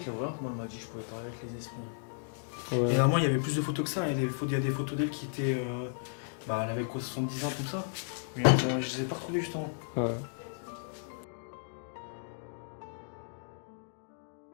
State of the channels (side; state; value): right; silent; digital silence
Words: l'horreur, moi, elle m'a dit que je pouvais parler avec les esprits. Et normalement, il y avait plus de photos que ça. Il y a des photos d'elle qui étaient. Bah, elle avait quoi, 70 ans, tout ça. Mais je les ai pas retrouvées justement. Ouais.